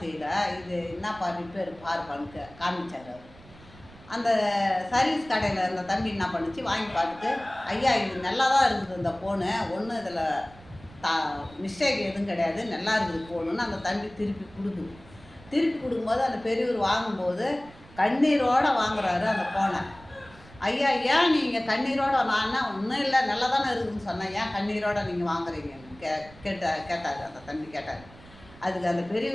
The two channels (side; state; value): right; noise; rumble, 22 dB below the sound